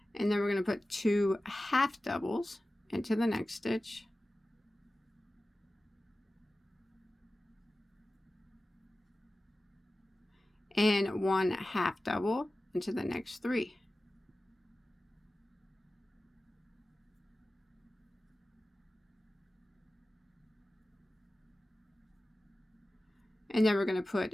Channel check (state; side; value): normal; both; correlation 0.95